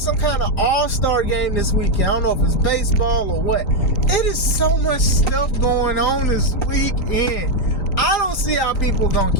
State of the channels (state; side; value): late; right; 3.9 ms